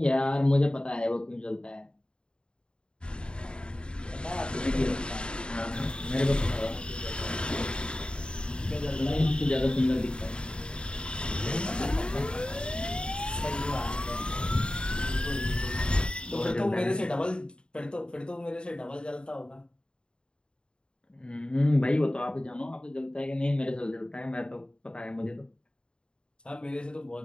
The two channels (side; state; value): right; late; 0.051 ms